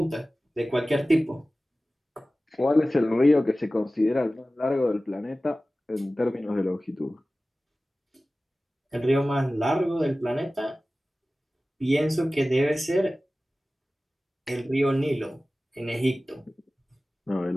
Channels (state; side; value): normal; both; correlation 0.96